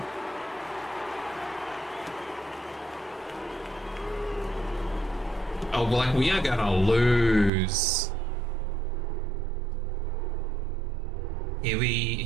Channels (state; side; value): drops out; left; at 7.5 s